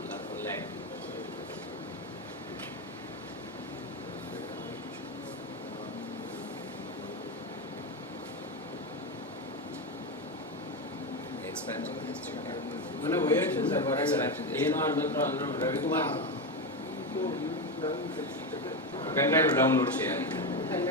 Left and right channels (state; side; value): normal; both; correlation 0.13